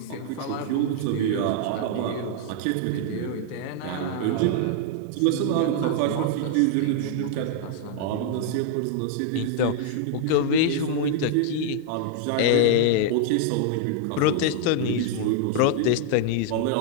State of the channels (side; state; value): both; different; correlation -0.01